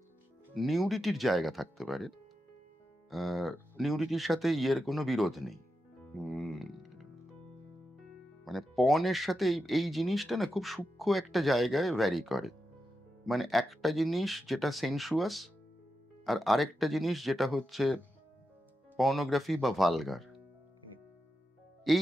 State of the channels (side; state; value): both; normal; correlation 0.89